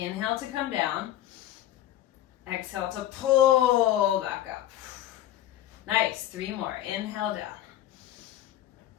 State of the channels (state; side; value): quieter; right; 12.8 dB